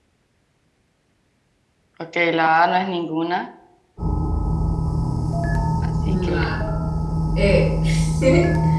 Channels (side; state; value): both; identical; correlation 1.00